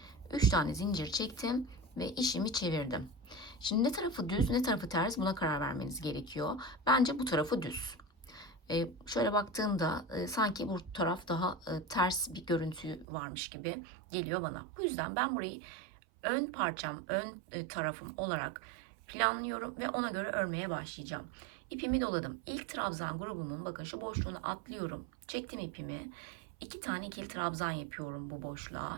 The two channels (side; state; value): left; drops out; at 13.1 s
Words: 3 tane zincir çektim ve işimi çevirdim. Şimdi ne tarafı düz ne tarafı ters, buna karar vermeniz gerekiyor. Bence bu tarafı düz. Şöyle baktığımda sanki bu taraf daha ters bir görüntü varmış gibi geliyor bana. Bu yüzden ben burayı ön parçam, ön tarafım olarak planlıyorum ve ona göre örmeye başlayacağım. İpimi doladım. İlk trabzan grubumun bakın şu boşluğunu atlıyorum. Çektim ipimi. 2 tane ikili trabzan yapıyorum bu